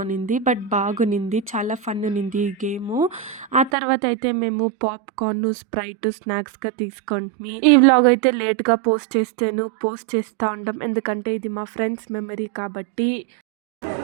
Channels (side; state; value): left; drops out; at 3.7 s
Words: బట్ బాగునింది. చాలా ఫన్ ఉన్నింది ఈ గేము. ఆ తర్వాత అయితే మేము పాప్‌కార్న్, స్ప్రైట్ స్నాక్స్‌గా తీసుకుంటిమి. ఈ వ్లాగ్ అయితే లేట్‌గా పోస్ట్ చేస్తా ఉంటాం. ఎందుకంటే ఇది మా ఫ్రెండ్స్ మెమరీ కాబట్టి.